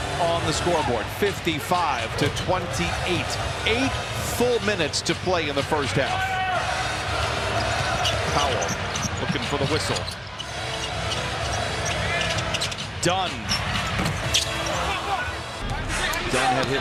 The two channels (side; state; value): both; identical; correlation 1.00